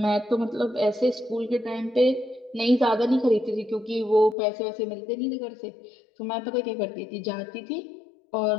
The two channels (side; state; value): right; drops out; at 4.4 s